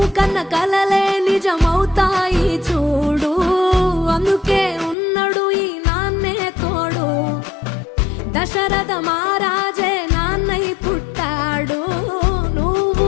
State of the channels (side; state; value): right; drops out; at 5.0 s